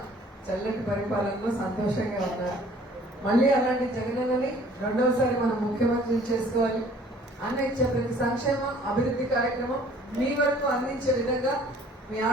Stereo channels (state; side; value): normal; both; correlation 0.55